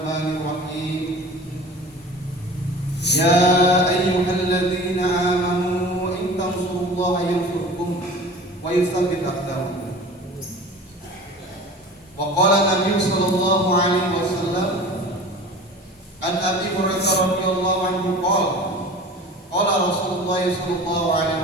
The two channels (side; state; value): both; normal; correlation 0.40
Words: الرحيم يا أيها الذين آمنوا إن تنصروا الله ينصركم ويثبت أقدامكم وقال النبي صلى الله عليه وسلم عن أبي هريرة رضي الله عنه قال قال رسول الله صلى الله عليه